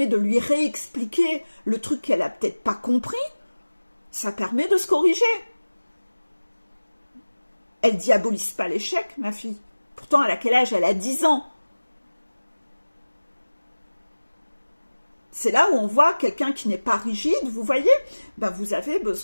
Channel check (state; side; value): inverted; both; correlation -1.00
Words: de lui réexpliquer le truc qu'elle a peut-être pas compris. Ça permet de se corriger. Elle diabolise pas l'échec, ma fille. Pourtant, elle a quel âge? Elle a 10 ans. C'est là où on voit quelqu'un qui n'est pas rigide, vous voyez, ben vous avez